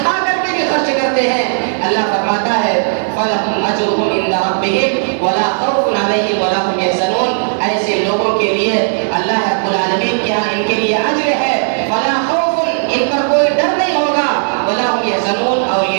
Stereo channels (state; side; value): silent; left; 70 dB below the other